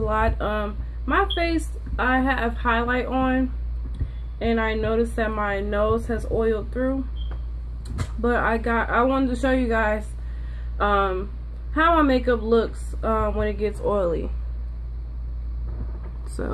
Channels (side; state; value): both; identical; correlation 1.00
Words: My face, I have highlight on and I noticed that my nose has oiled through, but I wanted to show you guys how my makeup looks when it gets oily.